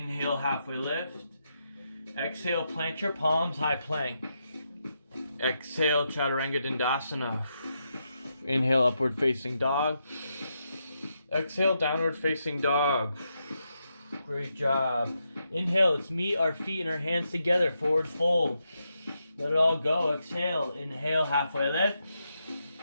halfway lift. Exhale, plant your palms, high plank. Exhale, chaturanga dandasana. Inhale, upward facing dog. Exhale, downward facing dog. Great job. Inhale, let's meet our feet and our hands together, forward fold. Let it all go. Exhale, inhale, halfway lift.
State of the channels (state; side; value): inverted; both; correlation -0.83